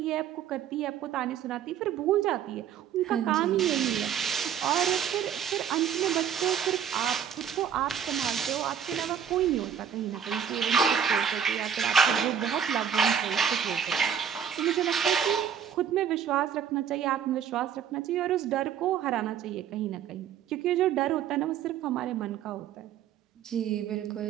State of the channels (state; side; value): quieter; left; 8.3 dB